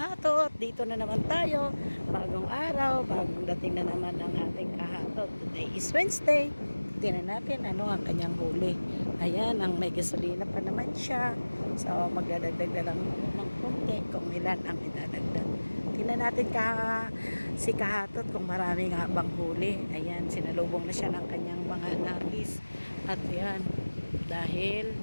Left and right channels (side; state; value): both; inverted; correlation -1.00